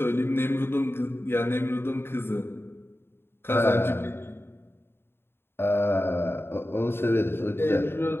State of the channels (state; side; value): late; right; 0.11 ms